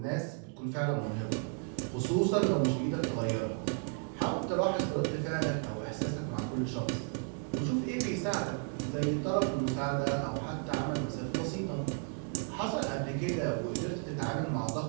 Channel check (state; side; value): quieter; left; 37.8 dB